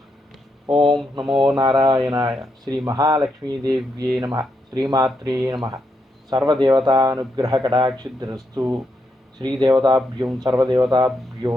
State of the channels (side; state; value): both; normal; correlation 0.81